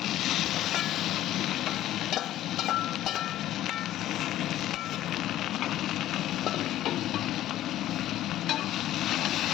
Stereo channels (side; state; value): right; quieter; 13.4 dB